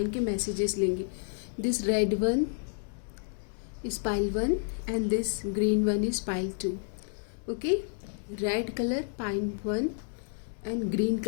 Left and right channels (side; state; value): right; silent; digital silence